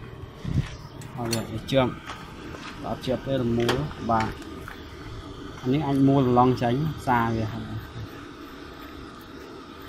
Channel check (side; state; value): both; identical; correlation 1.00